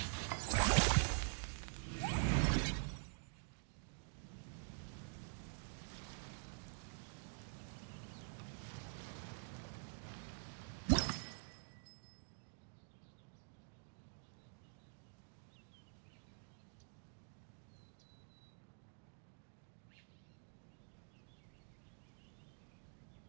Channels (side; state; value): left; silent; digital silence